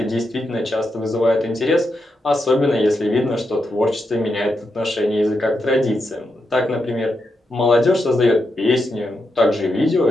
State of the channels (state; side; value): normal; both; correlation 0.84